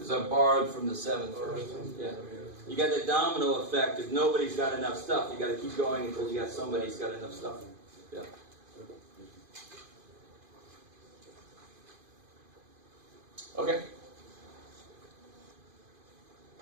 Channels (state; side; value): late; left; 2.5 ms